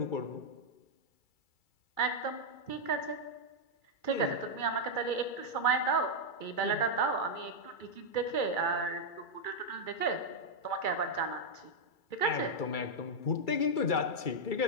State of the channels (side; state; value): right; late; 2.3 ms